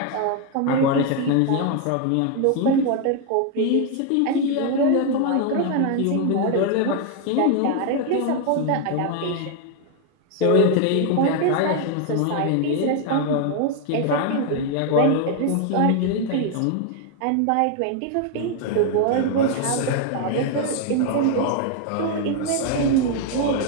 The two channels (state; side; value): different; both; correlation 0.01